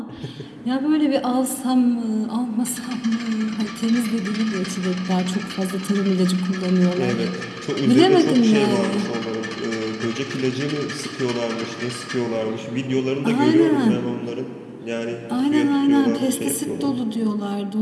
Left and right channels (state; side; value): identical; both; correlation 1.00